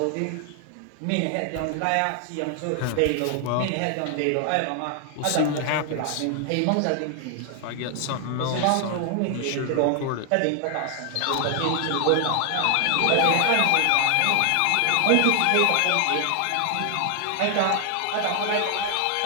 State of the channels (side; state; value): both; different; correlation 0.00